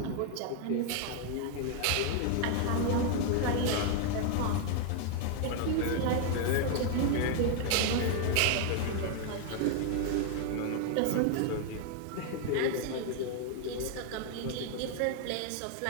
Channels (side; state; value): both; different; correlation 0.00